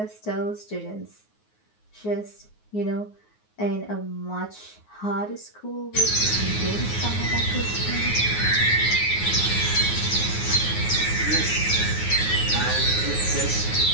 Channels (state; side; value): late; right; 9.5 ms